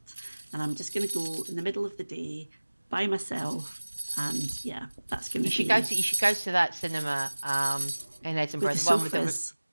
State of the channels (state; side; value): inverted; both; correlation -1.00